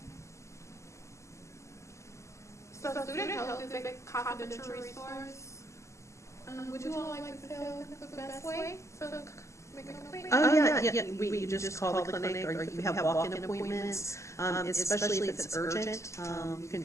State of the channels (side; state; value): right; late; 0.14 ms